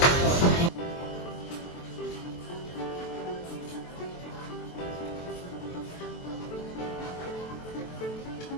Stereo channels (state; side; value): late; right; 23 ms